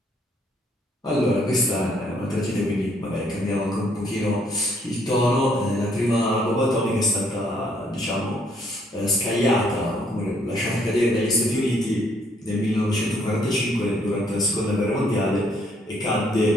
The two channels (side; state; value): both; normal; correlation 0.67